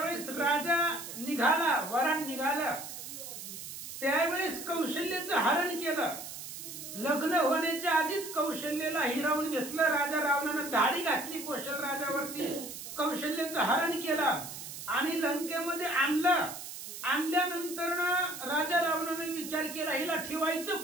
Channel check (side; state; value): right; noise; hiss, 10 dB below the sound